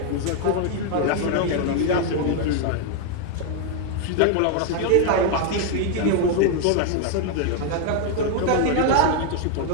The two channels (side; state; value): both; different; correlation 0.00